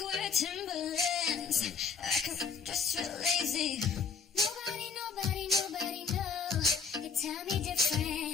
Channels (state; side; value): quieter; right; 5.5 dB